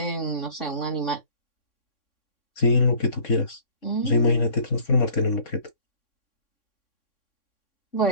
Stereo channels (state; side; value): late; right; 3.6 ms